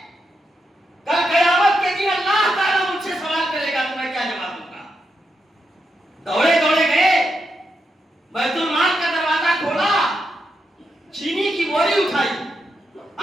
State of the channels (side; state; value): both; normal; correlation 0.84